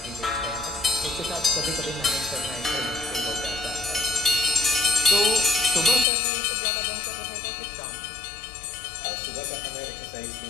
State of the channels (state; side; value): drops out; right; at 6.1 s